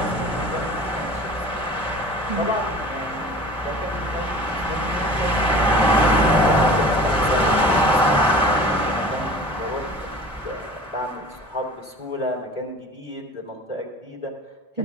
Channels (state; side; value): normal; both; correlation 0.41